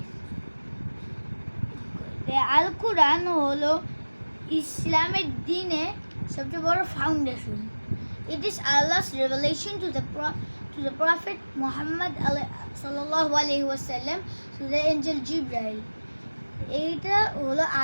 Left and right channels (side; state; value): both; inverted; correlation -1.00